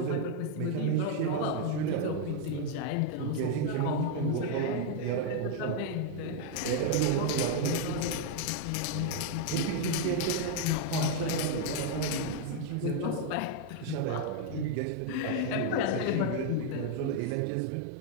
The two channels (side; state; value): both; different; correlation 0.00